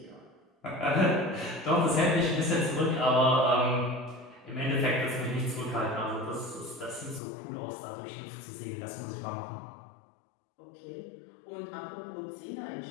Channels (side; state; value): right; drops out; at 7.2 s